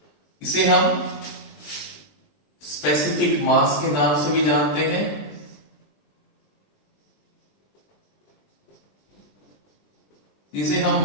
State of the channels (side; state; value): right; late; 20 ms